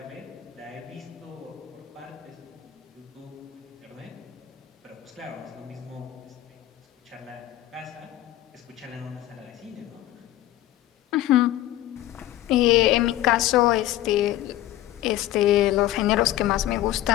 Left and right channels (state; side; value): quieter; right; 14.2 dB